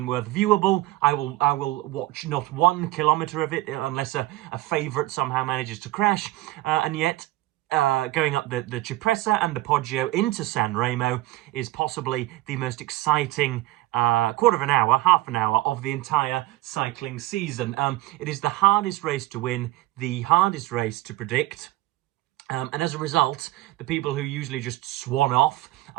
worth viewable. I will watch not 1 kilometre of it unless a favourite somehow manages to crash, and yet going up the Cipressa and the Poggio into San Remo is possibly the most exciting quarter of an hour, half an hour of the entire cycling season. It is the hardest race to win, the hardest race to predict. And as a result, the people who usually just swan off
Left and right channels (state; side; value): quieter; left; 17.7 dB